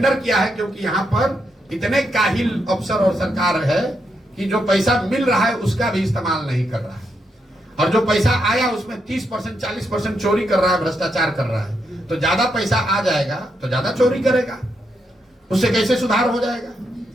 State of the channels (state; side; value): normal; both; correlation 0.81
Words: किया है, क्योंकि यहाँ पर इतने काहिल अफसर और सरकार है कि जो पैसा मिल रहा है उसका भी इस्तेमाल नहीं कर रहा है, और जो पैसा आया उसमें 30%, 40% चोरी कर रहा है, भ्रष्टाचार कर रहा है। तो ज्यादा पैसा आ जाएगा तो ज्यादा चोरी करेगा, उससे कैसे सुधार हो जाएगा?